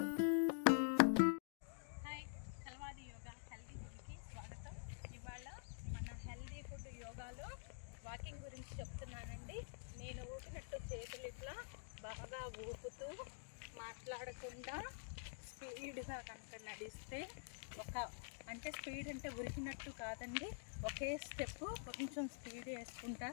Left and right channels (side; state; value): right; silent; digital silence